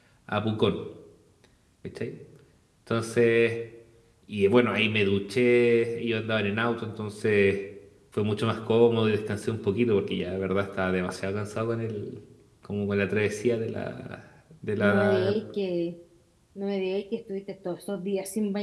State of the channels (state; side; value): identical; both; correlation 1.00